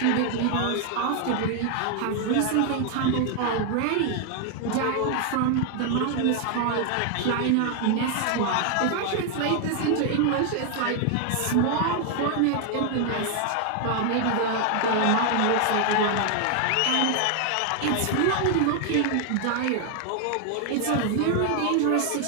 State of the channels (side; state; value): both; different; correlation 0.00